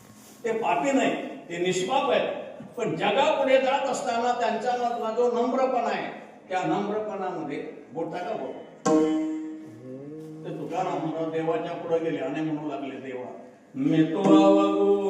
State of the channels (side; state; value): both; identical; correlation 1.00